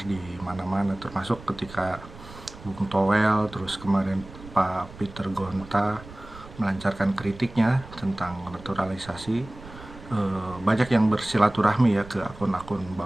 di mana-mana, termasuk ketika Bung Toel, terus kemarin Pak Peter Gonta melancarkan kritiknya tentang naturalisasi. Banyak yang bersilaturahmi ya ke akun-akun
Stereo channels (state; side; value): noise; right; rumble, 17 dB below the sound